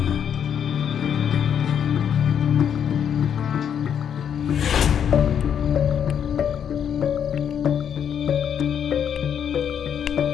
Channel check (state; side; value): quieter; right; 8.4 dB